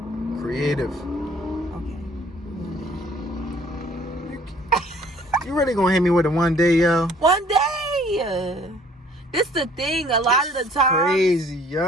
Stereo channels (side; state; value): both; normal; correlation 0.57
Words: Creative. Okay. You really gonna hit me with a one day, yo? One day. This the thing. A lot of the time, crazy,